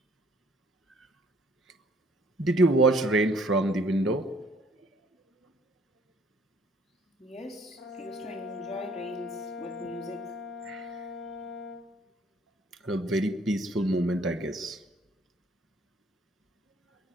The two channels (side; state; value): both; normal; correlation 0.60